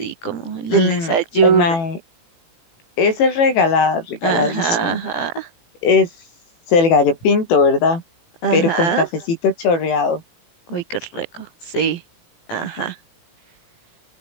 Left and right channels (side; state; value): right; late; 18 ms